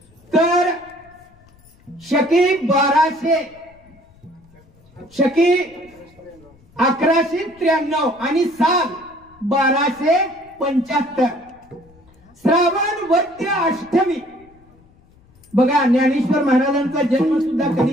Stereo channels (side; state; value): left; noise; rumble, 29 dB below the sound